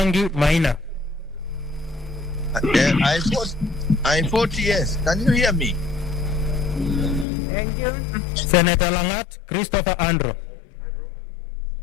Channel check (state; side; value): drops out; right; at 7.2 s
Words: Maina. I vote yes. Can you hear me? Thank you. Senator Langat Christopher Andrew.